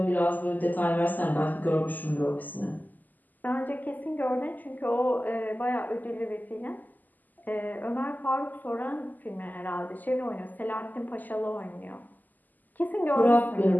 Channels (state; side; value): late; right; 0.084 ms